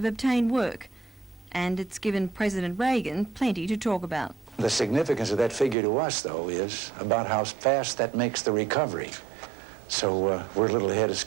obtained work, and it's given President Reagan plenty to talk about. The significance of that figure to us, though, is about how fast that makes the recovery. So we're a little ahead of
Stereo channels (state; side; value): drops out; left; at 5.8 s